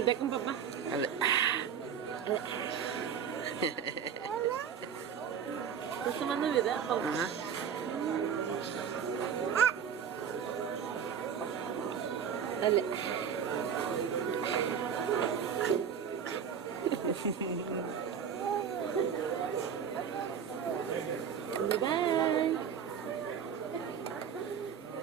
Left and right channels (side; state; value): left; quieter; 7.7 dB